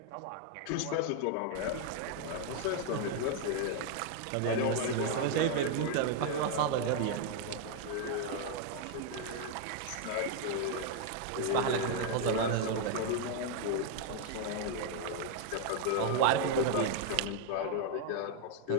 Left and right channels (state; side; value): different; both; correlation 0.00